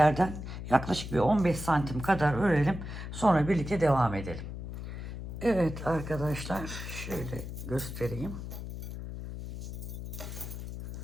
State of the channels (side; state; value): left; noise; hum, 8 dB below the sound